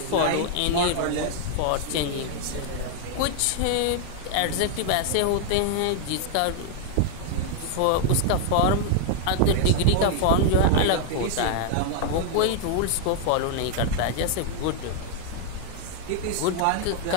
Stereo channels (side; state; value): both; different; correlation 0.00